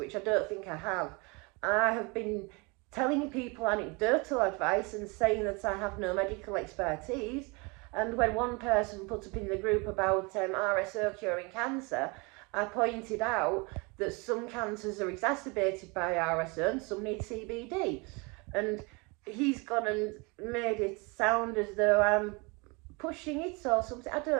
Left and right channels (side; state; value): left; quieter; 28.7 dB